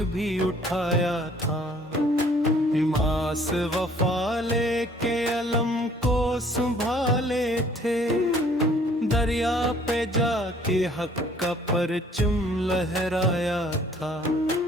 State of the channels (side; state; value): both; normal; correlation 0.57